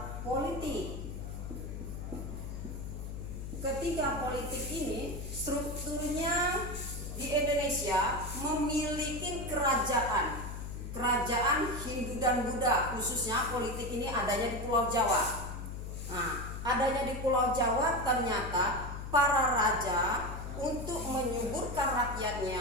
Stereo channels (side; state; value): left; noise; hum, 7 dB below the sound